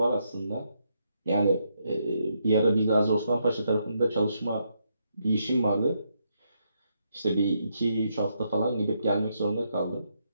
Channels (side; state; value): both; inverted; correlation -0.78